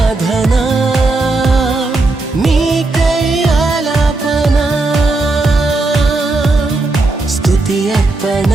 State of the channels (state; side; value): quieter; left; 3.2 dB